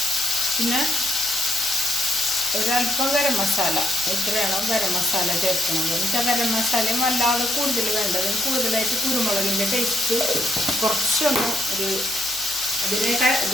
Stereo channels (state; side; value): noise; right; hum, 22 dB below the sound